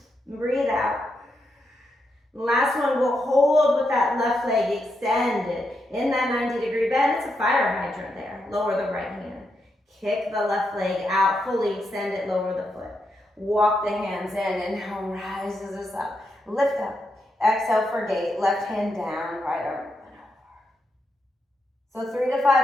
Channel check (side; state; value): both; normal; correlation 0.83